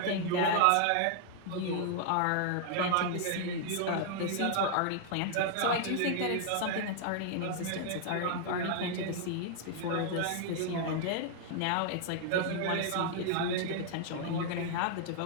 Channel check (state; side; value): different; both; correlation 0.00